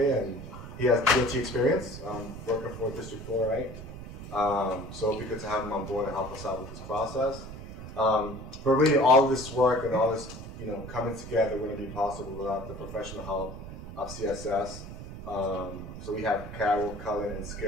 and he has DOT experience working for District 4, right? So it'll be good to have him on board and help us out with this process. But really, all of this work and all this, coming together wouldn't be possible without the professional help of CSS. So we have Carol, Cullen, and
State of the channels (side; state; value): right; noise; rumble, 11 dB below the sound